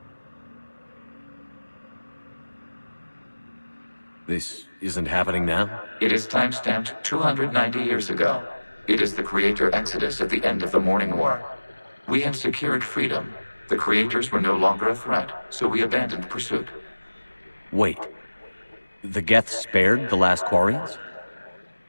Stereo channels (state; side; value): inverted; both; correlation -1.00